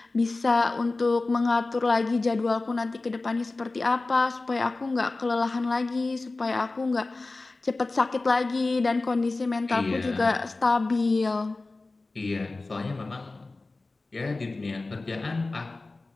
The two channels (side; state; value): right; quieter; 3.3 dB